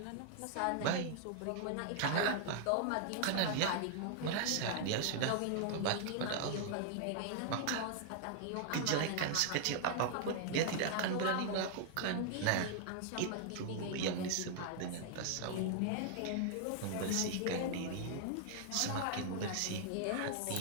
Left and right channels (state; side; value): different; both; correlation 0.00